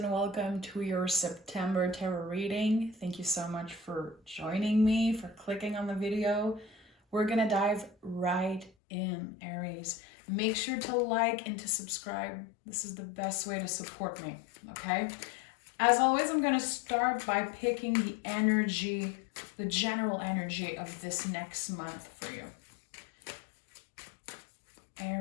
welcome to your September tarot reading. Thank you so much for joining me, for clicking on the video. We're gonna dive right in, Aries. Make sure to like and to subscribe. This is the best way to support me, okay? As always, I'm gonna start by picking the energy, the general energy of this next month for you.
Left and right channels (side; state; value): right; drops out; at 8.7 s